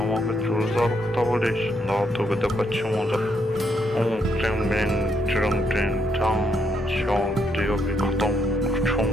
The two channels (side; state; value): both; normal; correlation 0.76